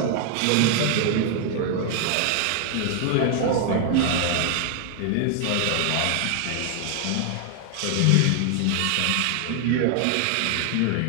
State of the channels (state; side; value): different; both; correlation 0.00